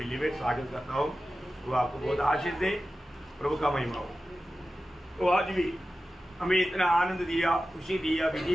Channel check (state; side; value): normal; both; correlation 0.94